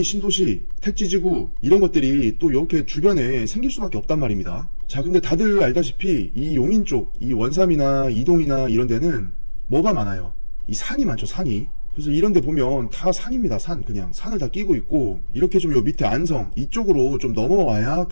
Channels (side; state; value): both; inverted; correlation -1.00